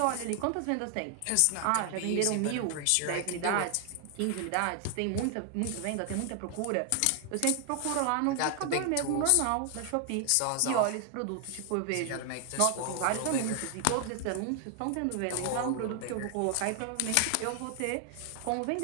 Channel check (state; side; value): different; both; correlation 0.00